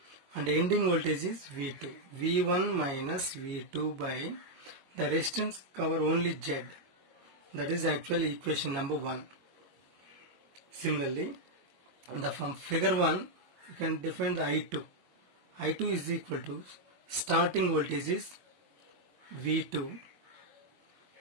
and ending voltage is V2. V1 minus V2 by the resistance cover only Z. That is actually equation number 1. Similarly, from figure 1, you can define the I2. I2 is equal to starting voltage is V2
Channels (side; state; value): left; late; 22 ms